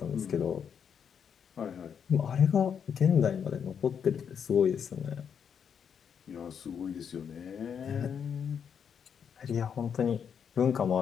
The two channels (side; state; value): right; quieter; 7.5 dB